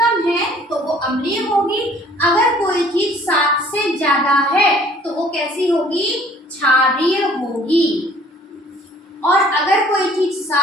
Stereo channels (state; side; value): normal; both; correlation 0.55